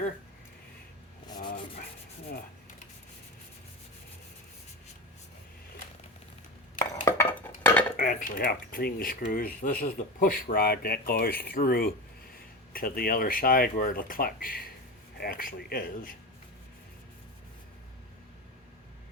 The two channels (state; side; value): normal; both; correlation 0.23